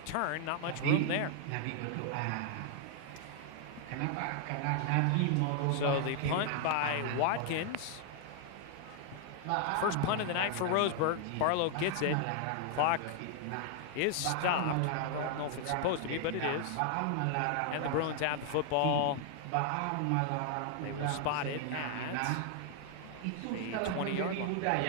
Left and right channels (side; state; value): both; different; correlation 0.00